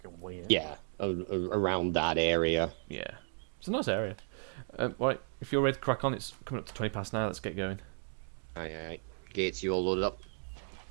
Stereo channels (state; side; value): silent; left; 55 dB below the other